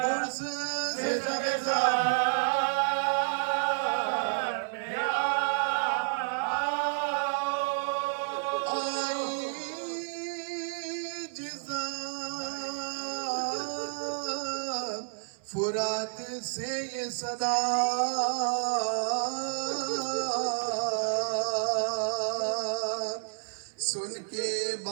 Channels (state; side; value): silent; left; 58 dB below the other